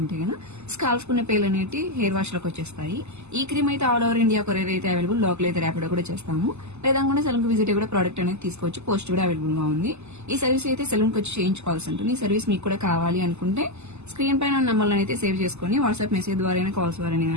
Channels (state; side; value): late; left; 0.81 ms